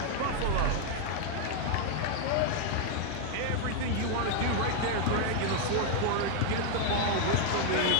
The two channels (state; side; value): different; both; correlation 0.01